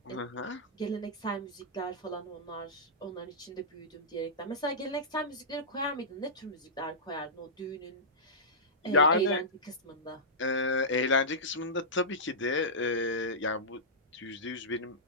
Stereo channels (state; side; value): normal; both; correlation -0.15